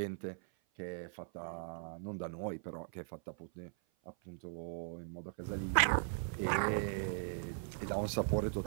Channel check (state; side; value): silent; left; 52 dB below the other